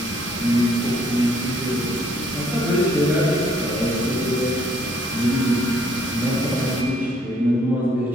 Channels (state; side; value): normal; both; correlation 0.65